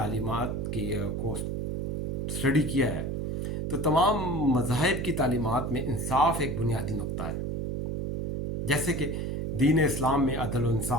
کو اسٹڈی کیا ہے تو تمام مذاہب کی تعلیمات میں انصاف ایک بنیادی نقطہ ہے. جیسے کہ دین اسلام میں عدل و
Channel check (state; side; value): noise; right; hum, 2 dB below the sound